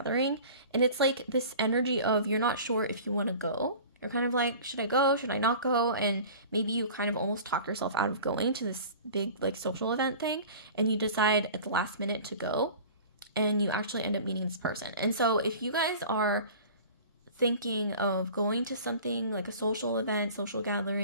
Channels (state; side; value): inverted; both; correlation -0.41